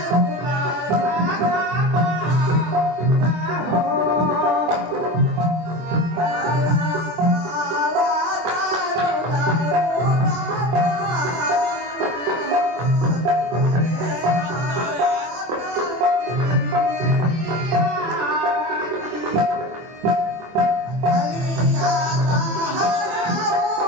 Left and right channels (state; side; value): late; left; 24 ms